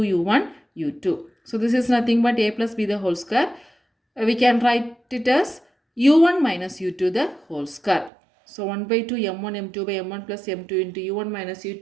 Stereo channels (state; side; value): drops out; left; at 8.1 s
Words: u1 u2. So this is nothing but a plus b the whole square. We can write it as u1 minus u2 the whole square. So 1 by 2 m1 m2 by m1 plus m2 into u1 minus